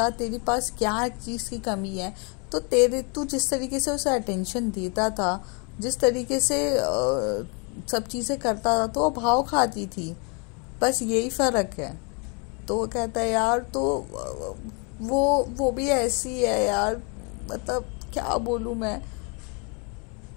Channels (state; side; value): quieter; right; 34.5 dB